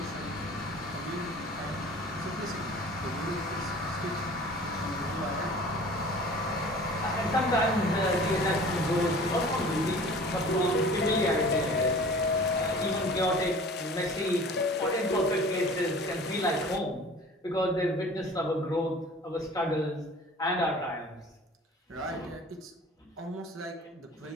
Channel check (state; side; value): normal; both; correlation 0.44